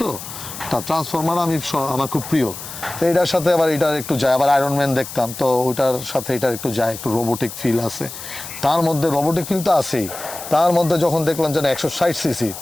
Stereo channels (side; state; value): left; noise; hiss, 11 dB below the sound